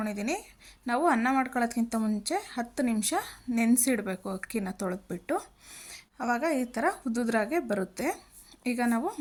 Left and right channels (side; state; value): both; identical; correlation 1.00